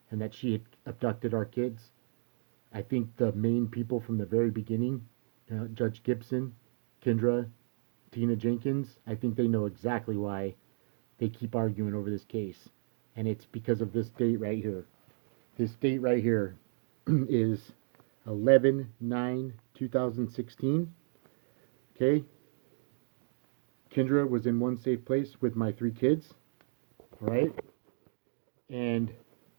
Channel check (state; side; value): silent; left; digital silence